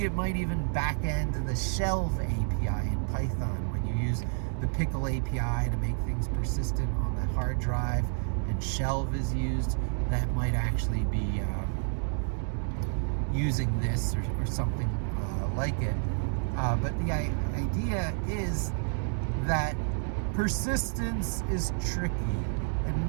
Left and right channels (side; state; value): left; silent; 58 dB below the other